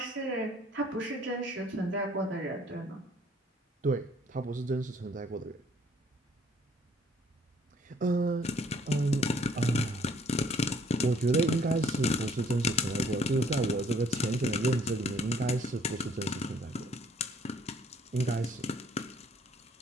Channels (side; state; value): both; normal; correlation 0.61